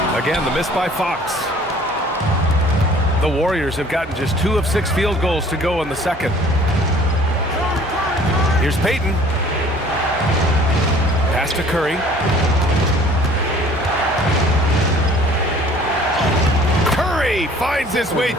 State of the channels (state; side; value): normal; both; correlation 0.52